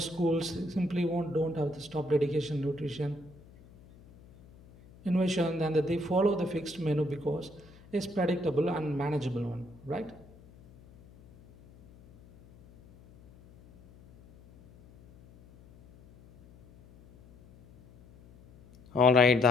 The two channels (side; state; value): left; noise; hum, 24 dB below the sound